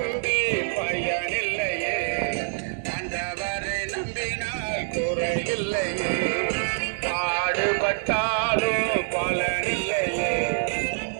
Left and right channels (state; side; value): silent; left; digital silence